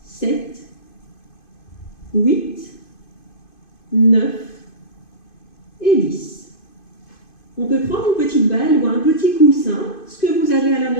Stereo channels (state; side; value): late; right; 2.5 ms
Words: 7, 8, 9 et 10. On peut prendre une petite balle ou un petit coussin, ce que vous avez à la